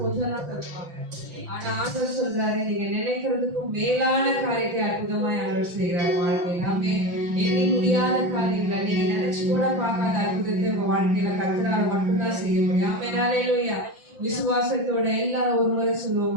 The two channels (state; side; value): late; left; 5.8 ms